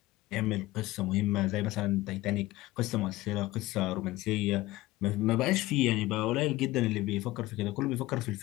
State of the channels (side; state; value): right; quieter; 17.9 dB